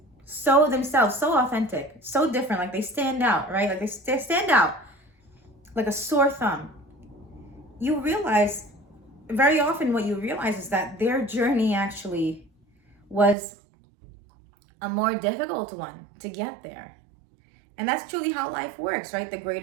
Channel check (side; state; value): left; drops out; at 13.4 s